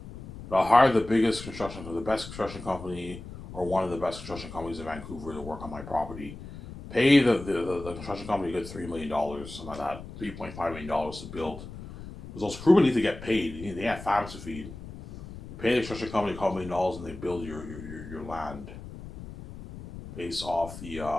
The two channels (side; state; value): left; noise; rumble, 13 dB below the sound